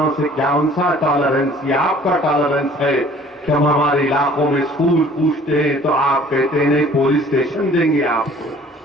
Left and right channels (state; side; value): normal; both; correlation 0.52